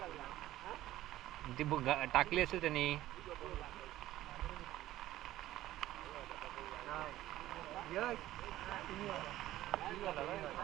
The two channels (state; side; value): quieter; left; 14.8 dB